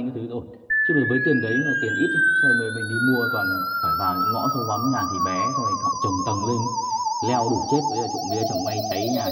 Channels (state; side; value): identical; both; correlation 1.00